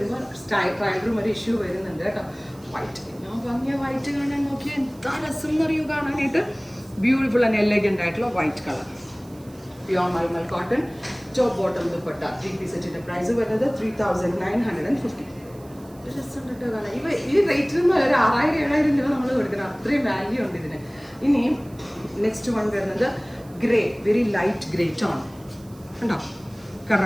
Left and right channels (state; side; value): noise; right; hiss, 26 dB below the sound